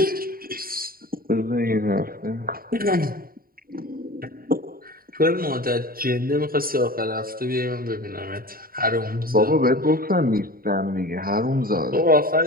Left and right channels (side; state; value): left; late; 0.43 ms